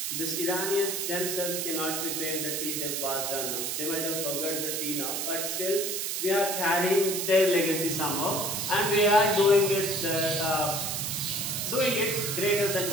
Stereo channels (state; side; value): noise; right; hiss, 2 dB below the sound